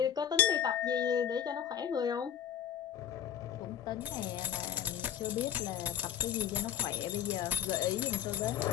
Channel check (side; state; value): right; quieter; 9.6 dB